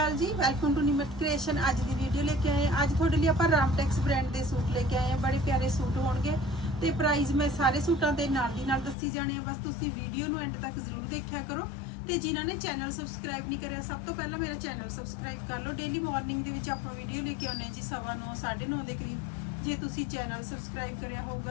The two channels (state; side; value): drops out; right; at 9.0 s